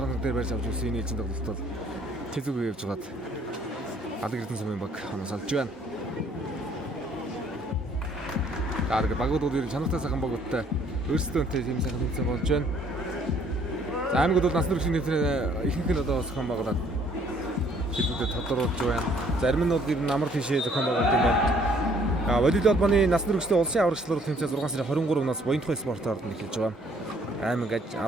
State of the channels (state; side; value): normal; both; correlation 0.61